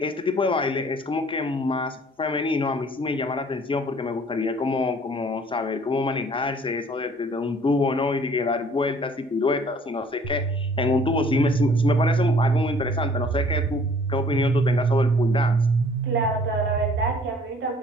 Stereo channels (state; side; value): normal; both; correlation 0.55